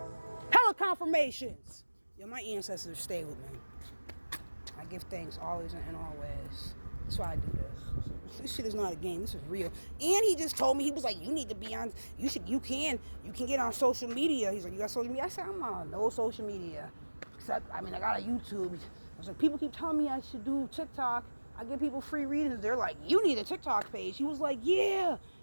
confirmations. Yo, my ancestors stay with me. I give thanks always and always. That's why I do this. This shit is not a game. This is real. And he just told me, he was like, you need to be on, you can get on social media. He's like, you got social media? I said, I'm on no social media. Except, I got a YouTube. I was like, people keep telling me I should do TikTok. I give people free readings. They're like, you need a TikTok page. He was like, yeah.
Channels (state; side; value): inverted; both; correlation -1.00